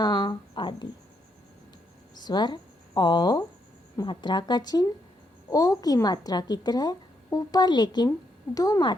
आदि। स्वर औ, मात्रा का चिन्ह ओ की मात्रा की तरह ऊपर लेकिन दो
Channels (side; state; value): both; normal; correlation 0.77